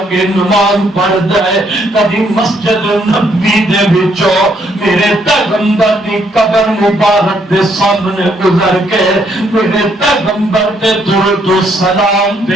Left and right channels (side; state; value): both; normal; correlation 0.71